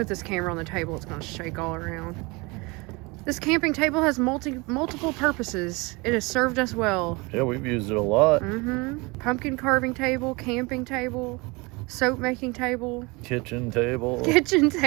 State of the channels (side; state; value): left; quieter; 26.1 dB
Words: this camera on the table, it's gonna shake all around. This camping table has multiple purposes. It has served us well. Yeah, we've used it a lot. Pumpkin carving table, camping table, soap making table, Kitchen table. kitchen